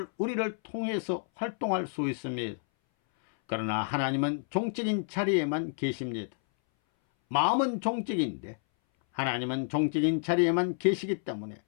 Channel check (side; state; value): right; silent; 58 dB below the other